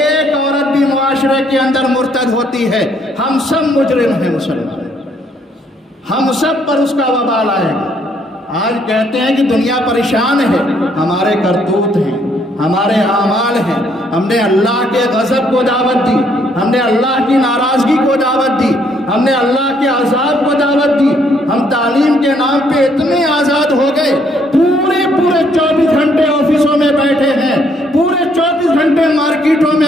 عورت بھی معاشرے کے اندر مرتد ہوتی ہے، ہم سب مجرم ہیں مسلمان، ہم سب پر اس کا وبال آئے گا۔ آج کہتے ہیں کہ دنیا پریشان ہے، ہمارے کرتوت ہیں، ہمارے اعمال ہیں۔ ہم نے اللہ کے غضب کو دعوت دی، ہم نے اللہ کی ناراضگی کو دعوت دی، ہم نے اللہ کے عذاب کو دعوت دی۔ ہم تعلیم کے نام پہ اتنے آزاد ہو گئے، پورے 24 گھنٹے آفسوں میں بیٹھے ہیں، پورے 24 گھنٹے مارکیٹوں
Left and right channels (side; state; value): both; normal; correlation 0.68